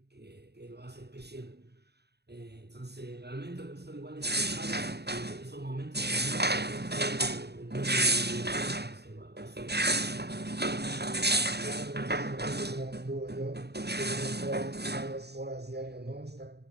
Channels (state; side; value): late; left; 0.48 ms